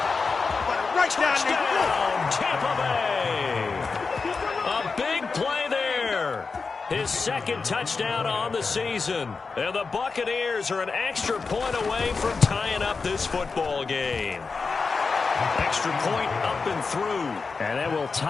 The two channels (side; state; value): right; quieter; 4.6 dB